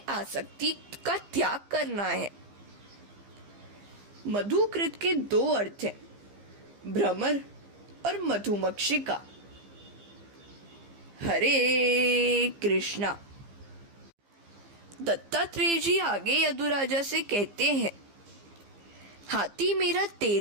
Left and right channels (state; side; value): late; left; 15 ms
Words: का त्याग करना है। मधुकृत के दो अर्थ हैं, भ्रमर और मधुमक्षिका। हरे कृष्णा। दत्तात्रेय जी आगे यदुराजा से कहते हैं, हाथी मेरा